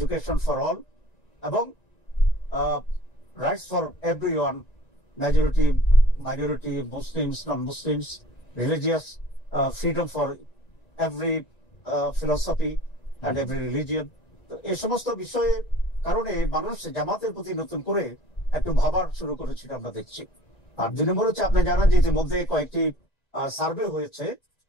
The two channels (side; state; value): right; late; 1.9 ms